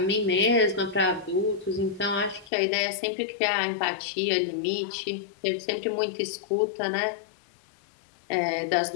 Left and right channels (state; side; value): drops out; right; at 2.5 s